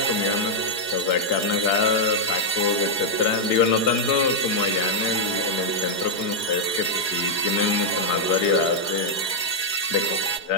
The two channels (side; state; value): right; late; 4.8 ms